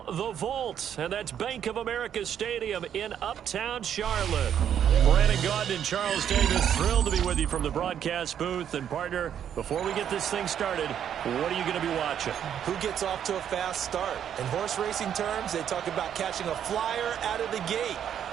the Vault. And that's Bank of America Stadium in Uptown Charlotte. Brandon Gaudin and Charles Davis, thrilled to be with you from the broadcast booth. And partner, before we get this thing started, what are you going to be watching? Who gets off to a fast start? In horse racing terms, they talk about catching a flyer out of the gate.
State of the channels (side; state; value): left; quieter; 9.2 dB